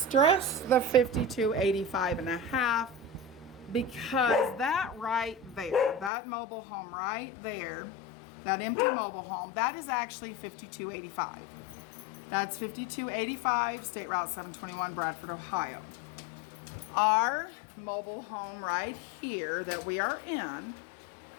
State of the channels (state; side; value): drops out; right; at 6.1 s